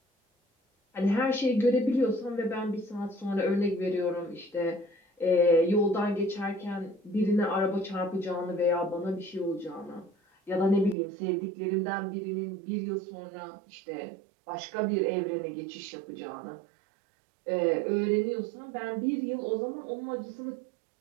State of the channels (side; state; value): left; drops out; at 11.0 s